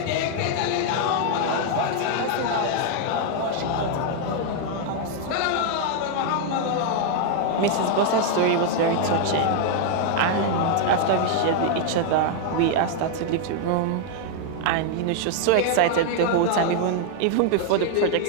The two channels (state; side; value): different; both; correlation 0.00